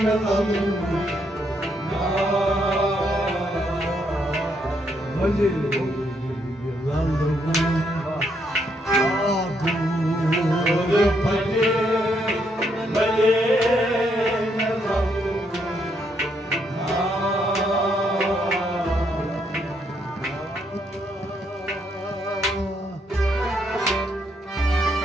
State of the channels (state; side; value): normal; both; correlation 0.75